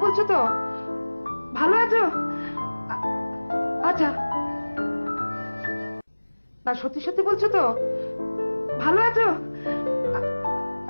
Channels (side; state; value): both; inverted; correlation -1.00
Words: বলছো তো? ভালো আছো? আ- আচ্ছা, না, সত্যি সত্যি বলছো তো? ভালো আছো? আ-